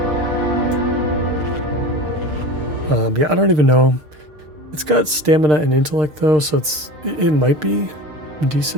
Yeah, I don't even know. It's got stamina and intellect though, so it might be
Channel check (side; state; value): left; late; 6.6 ms